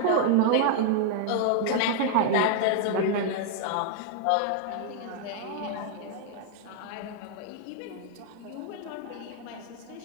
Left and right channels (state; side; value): different; both; correlation 0.00